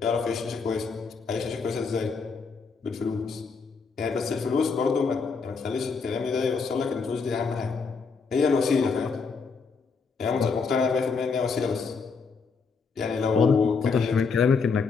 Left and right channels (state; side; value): quieter; right; 5.0 dB